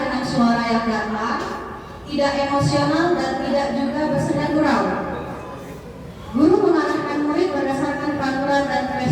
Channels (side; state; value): both; identical; correlation 1.00